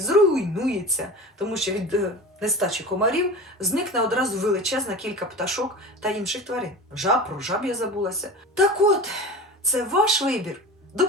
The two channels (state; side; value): normal; both; correlation 0.33